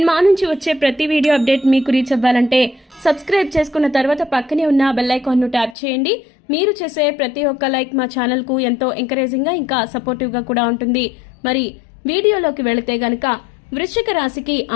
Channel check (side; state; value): right; drops out; at 5.8 s